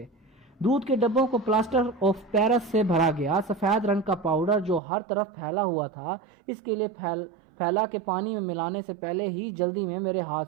دودھ کے ڈبوں کو پلاسٹر آف پیرس سے بھرا گیا۔ سفید رنگ کا پاؤڈر جو ہر طرف پھیلا ہوا تھا، اس کے لیے پھیلا کے پانی میں ملانے سے پہلے ہی جلدی میں میرے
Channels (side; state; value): left; drops out; at 4.8 s